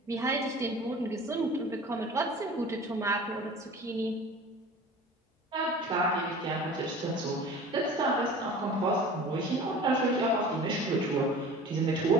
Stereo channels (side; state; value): both; normal; correlation 0.41